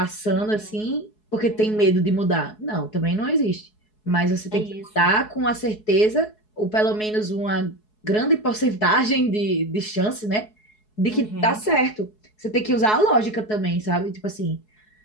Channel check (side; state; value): right; late; 4.7 ms